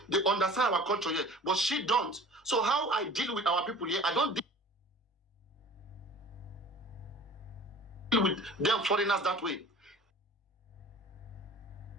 They understand our culture here. But she don't. So how I deal with our people here, I don't deal with them foreigners that way.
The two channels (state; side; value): normal; both; correlation 0.44